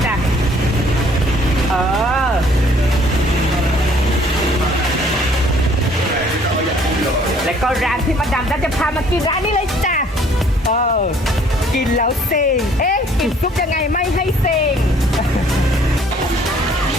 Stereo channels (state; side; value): normal; both; correlation 0.59